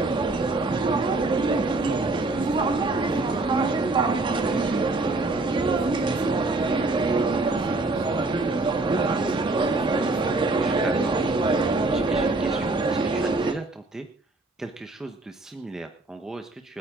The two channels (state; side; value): quieter; left; 3.1 dB